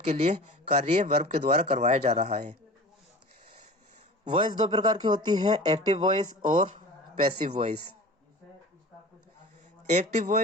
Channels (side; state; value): both; normal; correlation 0.38